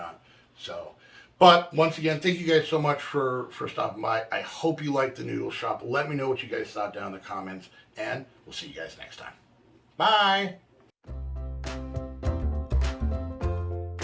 So, but once again, thank you guys so much for stopping by. I hope you liked the noodle shop. Let me know what you guys thought down in the comments. And we'll see you guys next time. Bye.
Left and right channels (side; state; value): both; identical; correlation 1.00